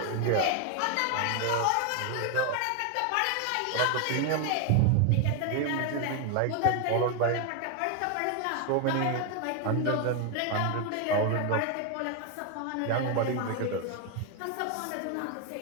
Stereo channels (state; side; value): different; both; correlation 0.01